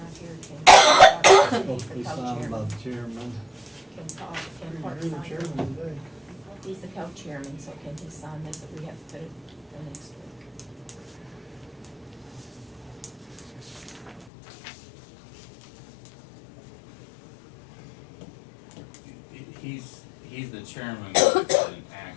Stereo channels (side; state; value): right; drops out; at 14.3 s